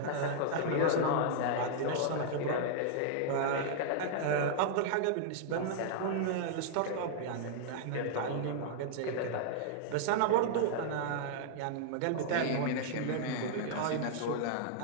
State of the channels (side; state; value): both; different; correlation -0.01